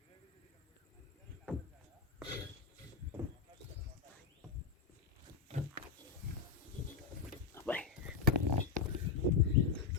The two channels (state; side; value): quieter; right; 5.3 dB